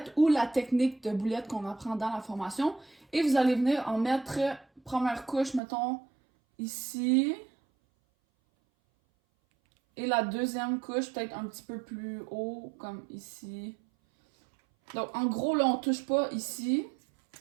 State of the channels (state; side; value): drops out; left; at 5.6 s